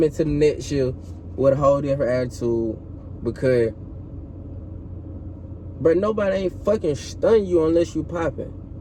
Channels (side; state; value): both; identical; correlation 1.00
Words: to the next year with a whole different attitude, because, bro, nobody ain't fucking stun you unless you popping.